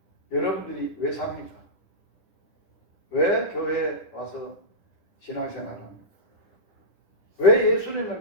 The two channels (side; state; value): right; late; 10 ms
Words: 여러분들이 왜 삽니까? 왜 교회에 와서 신앙생활합니까? 왜 예수님을